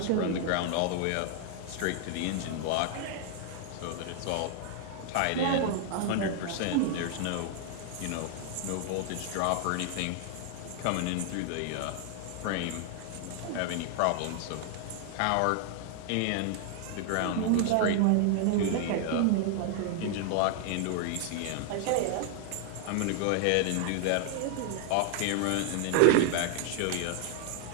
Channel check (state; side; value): different; both; correlation 0.00